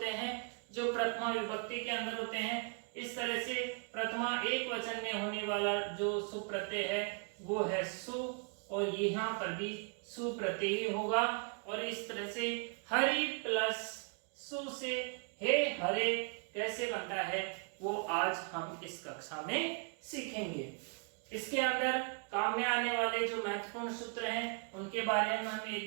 हैं जो प्रथमा विभक्ति के अंदर होते हैं। इस तरह से प्रथमा एक वचन में होने वाला जो सुप प्रत्यय है वो है सु, और यहाँ पर भी सु प्रत्यय ही होगा। और इस तरह से हरि प्लस सु से हे हरे कैसे बनता है वो आज हम इस कक्षा में सीखेंगे। इसके अंदर काम में आने वाले जो महत्वपूर्ण सूत्र हैं उनके बारे में हम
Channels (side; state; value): left; quieter; 38.1 dB